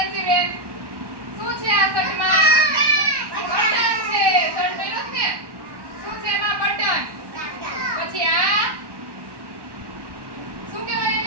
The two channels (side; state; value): left; late; 1.1 ms